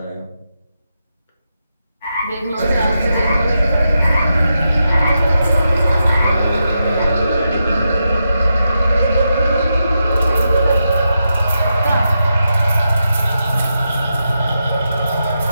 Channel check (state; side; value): inverted; both; correlation -0.86